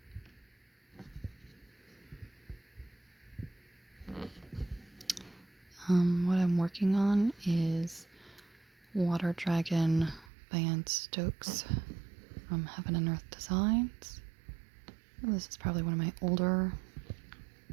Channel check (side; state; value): left; drops out; at 10.3 s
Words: What I'm working on is Water Dragon by Anne Stokes from Heaven and Earth Designs. This is probably one of my older